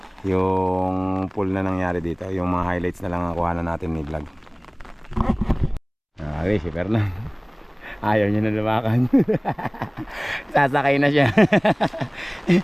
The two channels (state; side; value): identical; both; correlation 1.00